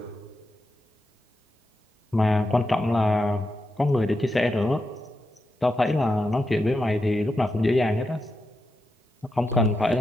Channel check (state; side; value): normal; both; correlation 0.87